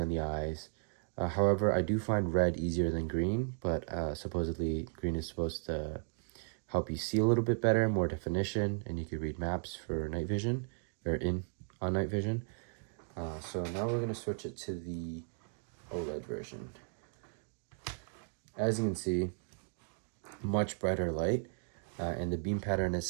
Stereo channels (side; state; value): left; silent; 54 dB below the other